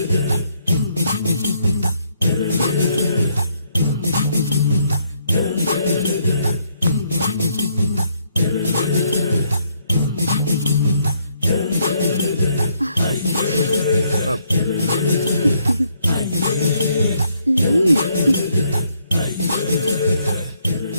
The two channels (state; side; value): inverted; both; correlation -0.71